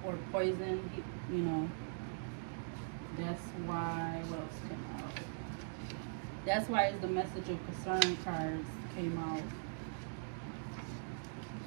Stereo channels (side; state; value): left; silent; digital silence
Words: or poisoned, you know. That's why, what else came out? That's why the message of concern cards came out.